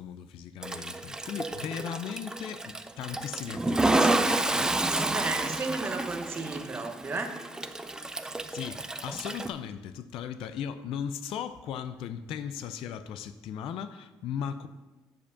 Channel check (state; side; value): normal; both; correlation 0.67